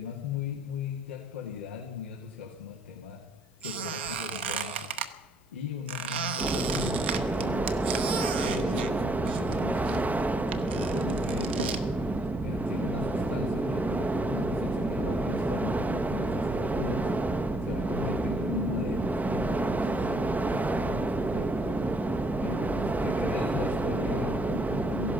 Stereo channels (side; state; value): both; normal; correlation 0.68